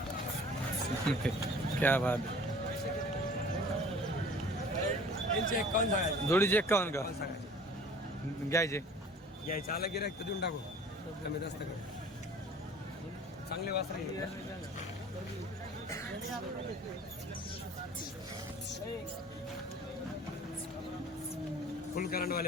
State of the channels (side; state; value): both; normal; correlation 0.47